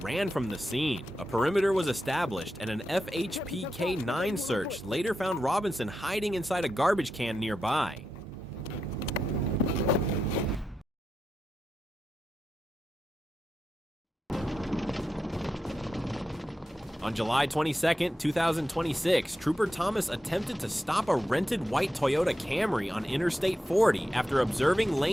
from the scene. A perimeter was established and an FHPK-9 search later found Robinson hiding inside a garbage can nearby. On July 22, 2026, Trooper Thomas attempted to stop a rented white Toyota Camry on Interstate 40 after observing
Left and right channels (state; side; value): normal; both; correlation 0.88